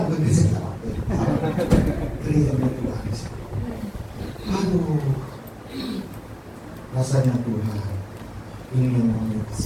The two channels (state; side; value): identical; both; correlation 1.00